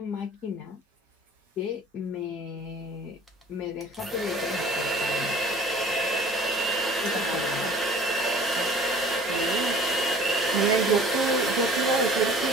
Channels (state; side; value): normal; both; correlation 0.47